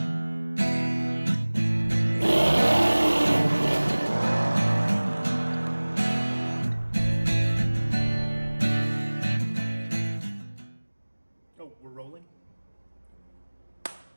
Oh, we're rolling?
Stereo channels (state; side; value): inverted; both; correlation -1.00